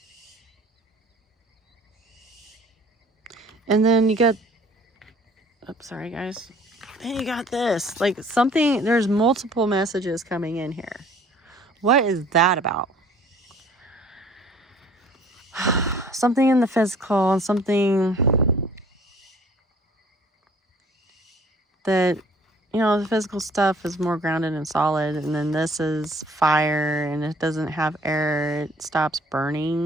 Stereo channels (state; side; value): normal; both; correlation 0.54